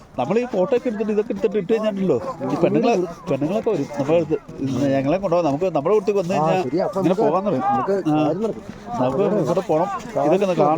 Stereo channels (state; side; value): identical; both; correlation 1.00